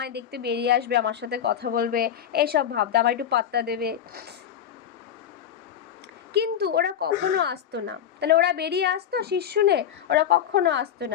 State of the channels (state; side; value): quieter; right; 9.4 dB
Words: দেখতে বেরিয়ে আসবে, আমার সাথে কথা বলবে, এইসব ভাবতো, আমার একটু পাত্তা দেবে। কিন্তু ওরা কখনো আসতো না। তাহলে ওরা বেরিয়ে আসতো শীষ শুনে, ওরা কখনো আসতো